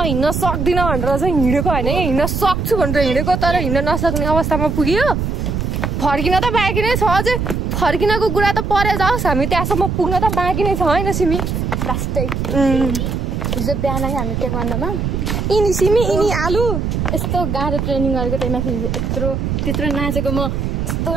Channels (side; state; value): right; noise; rumble, 1 dB below the sound